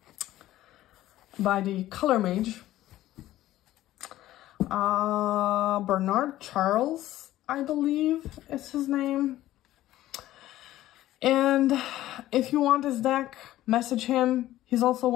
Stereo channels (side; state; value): right; quieter; 14.6 dB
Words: by the Color Mage. Bernard Charles, I believe is his name. And if you want this deck, message him. He's also